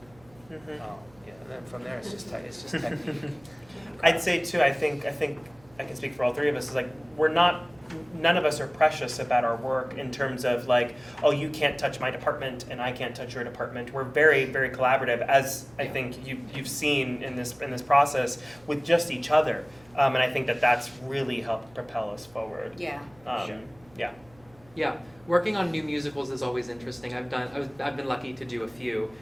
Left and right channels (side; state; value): right; noise; hum, 28 dB below the sound